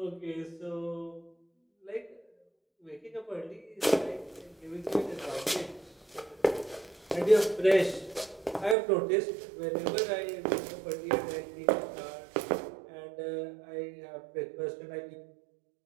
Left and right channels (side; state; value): left; drops out; at 8.8 s